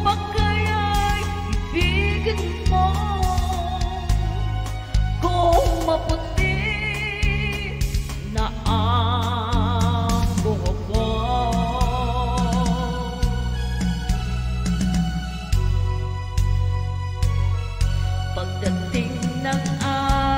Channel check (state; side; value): identical; both; correlation 1.00